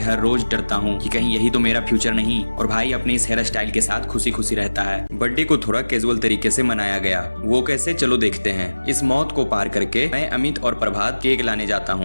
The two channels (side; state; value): both; inverted; correlation -1.00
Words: रोज डरता हूँ कि कहीं यही तो मेरा फ्यूचर नहीं। और भाई अपने इस हेयर स्टाइल के साथ खुशी खुशी रहता है। बर्थडे को थोड़ा कैजुअल तरीके से मनाया गया, वो कैसे चलो देखते हैं। इस मौत को पार करके मैं अमित और प्रभात केक लाने जाता